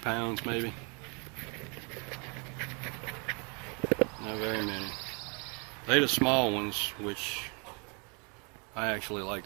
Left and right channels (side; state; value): left; quieter; 33.8 dB